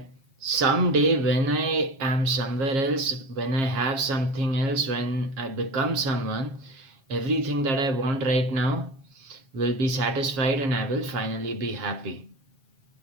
someday when I am somewhere else, when I have something else, when I become someone, everything that I want right now will be satisfied and I will finally be happy.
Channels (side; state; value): left; late; 7.4 ms